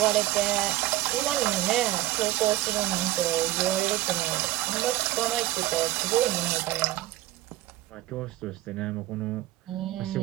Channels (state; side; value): quieter; left; 15.8 dB